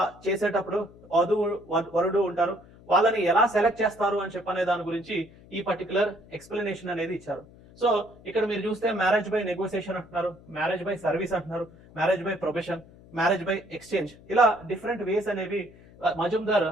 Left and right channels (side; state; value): left; noise; hum, 23 dB below the sound